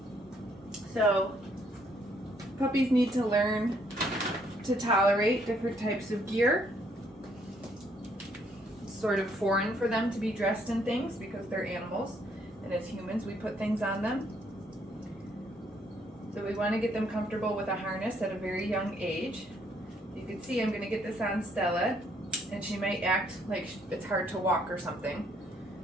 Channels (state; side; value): normal; both; correlation 0.69